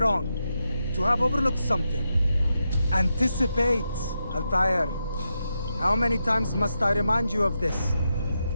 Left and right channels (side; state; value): both; inverted; correlation -0.86